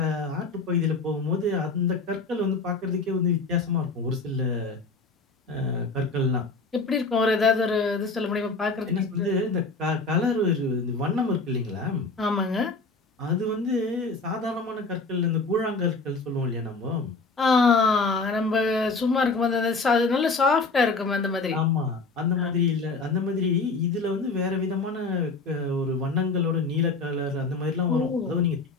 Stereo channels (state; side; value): quieter; right; 3.9 dB